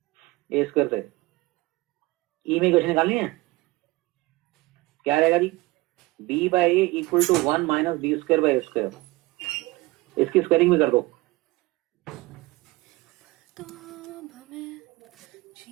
ए स्क्वायर से. ई में इक्वेशन निकालनी है. क्या रहेगा जी? B by a equal to 1 minus b square by a square. इसकी स्क्वायरिंग भी कर दो.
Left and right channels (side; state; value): left; quieter; 21.1 dB